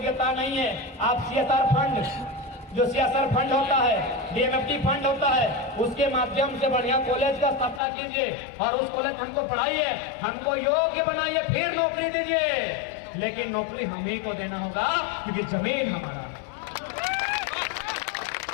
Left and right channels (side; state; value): right; drops out; at 7.8 s